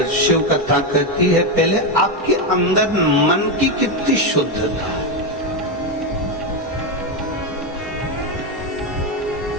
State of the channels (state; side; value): normal; both; correlation 0.09